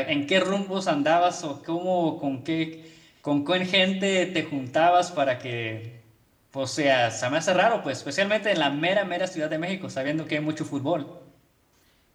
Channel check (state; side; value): identical; both; correlation 1.00